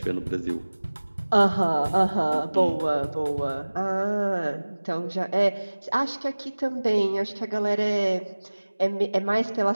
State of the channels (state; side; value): inverted; both; correlation -1.00